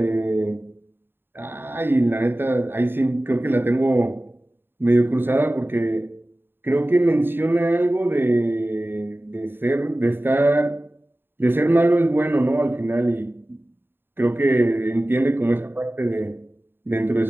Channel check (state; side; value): late; left; 0.10 ms